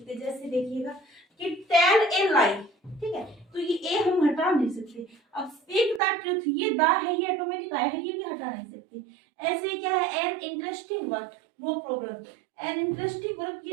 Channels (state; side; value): drops out; left; at 6.0 s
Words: जैसे देखिएगा कि टेल ए लाई, ठीक है, तो ये ए हम हटा नहीं सकते। अब स्पीक द ट्रूथ, ये द है ये ऑटोमेटिक आया है, ये भी हटा नहीं सकते। ऐसे ही क्या है an interesting word, no problem, an interesting word